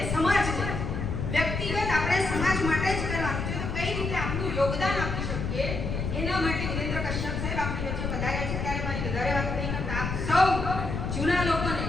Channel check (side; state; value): left; noise; rumble, 3 dB below the sound